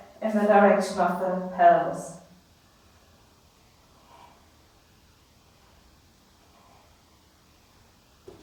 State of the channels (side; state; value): both; identical; correlation 1.00